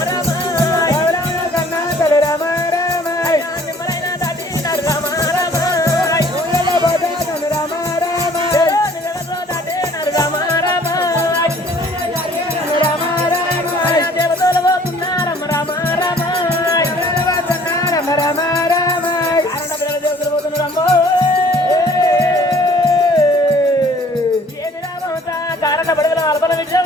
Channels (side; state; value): both; normal; correlation 0.56